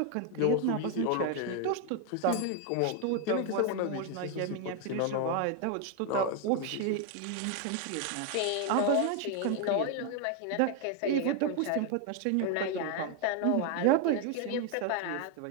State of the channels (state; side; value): different; both; correlation 0.01